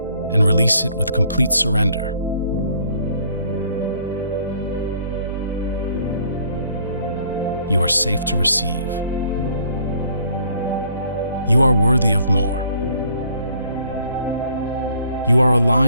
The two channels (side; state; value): both; inverted; correlation -0.61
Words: and release it with complete surrender. You are safe to receive. You are worthy of more. You are